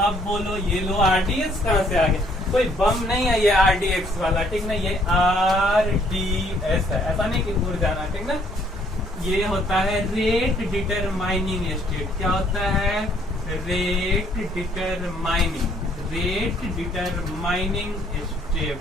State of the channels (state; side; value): normal; both; correlation 0.64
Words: बोलो ये लो, RDS कहाँ से आ गया, कोई बम नहीं है ये RDX वाला, ठीक ना, ये RDS है, ऐसा नहीं कि दूर जाना, ठीक ना। ये होता है रेट डिटरमाइनिंग स्टेट। क्या होता है, रेट डिटरमाइनिंग स्टेप